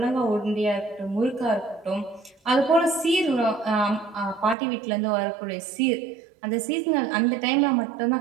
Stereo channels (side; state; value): left; drops out; at 4.5 s